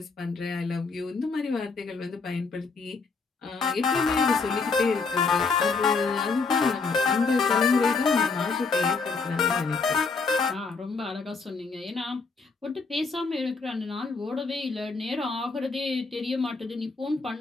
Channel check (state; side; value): quieter; right; 4.5 dB